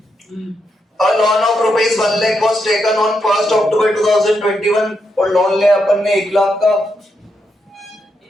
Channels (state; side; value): normal; both; correlation 0.82